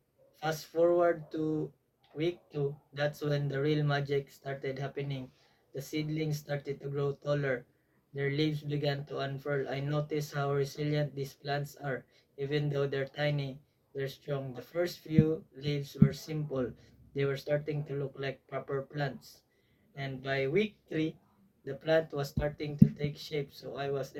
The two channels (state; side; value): identical; both; correlation 1.00